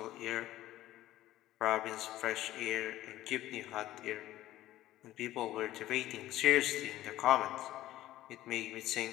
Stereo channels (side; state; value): right; quieter; 14.7 dB